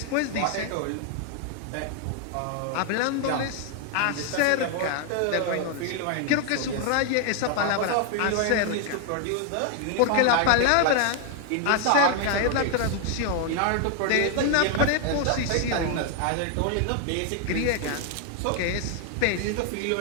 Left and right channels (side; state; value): both; different; correlation 0.00